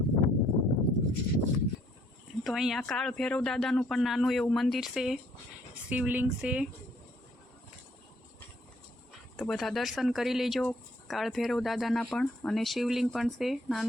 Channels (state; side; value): normal; both; correlation 0.65